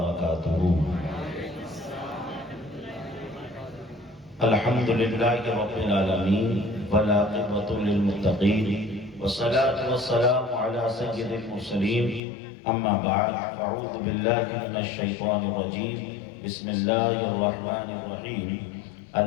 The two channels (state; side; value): drops out; right; at 12.2 s